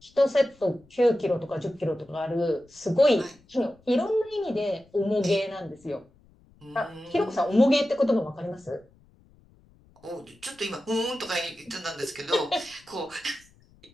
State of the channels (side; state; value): left; noise; rumble, 29 dB below the sound